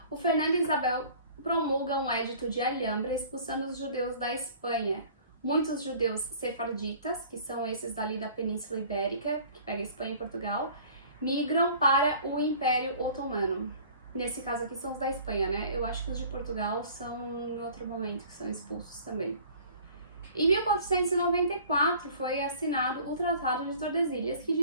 O Fernando Isabel promulga um édito de Alhambra expulsando os judeus da Espanha. Muitos judeus sefarditas, que são esses dali da Península Ibérica, que pega Espanha e Portugal, migram para o Império Otomano. Nesse caso aqui são os da Espanha, né? Eu acho que os de Portugal são em outro momento, que são expulsos também. Em 1494 foi assinado o Tratado de Tordesilhas, que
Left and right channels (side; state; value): both; inverted; correlation -0.49